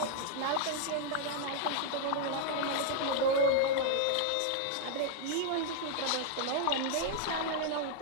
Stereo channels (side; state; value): both; different; correlation 0.00